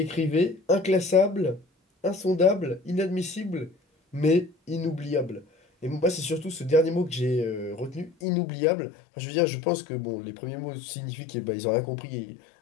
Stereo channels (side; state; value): right; drops out; at 8.1 s